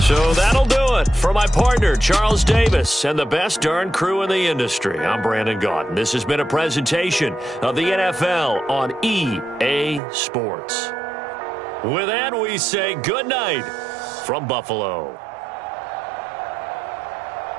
So that'll do it for my partner, Charles Davis, and the best darn crew in the industry. I'm Brandon Gaudin. This has been a presentation of the NFL on EA Sports. With that, we say good night from Buffalo.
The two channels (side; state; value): left; drops out; at 10.0 s